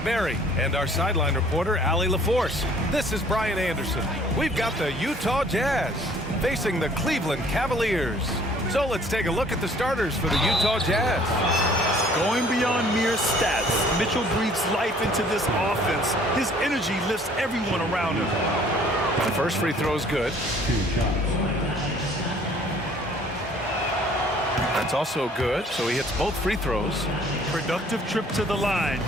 Barry and our sideline reporter, Allie LaForce, this is Brian Anderson. We've got the Utah Jazz facing the Cleveland Cavaliers. So let's take a look at the starters for the Utah Jazz. Going beyond mere stats, Mitchell breathes life into this offense. His energy lifts everyone around him. The first free throw is good. That's also good, so he hits both free throws. Productive trip to the line.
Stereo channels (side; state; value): both; normal; correlation 0.56